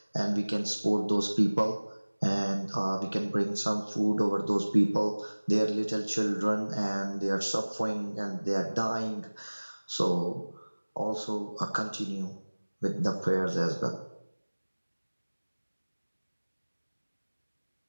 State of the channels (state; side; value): inverted; both; correlation -1.00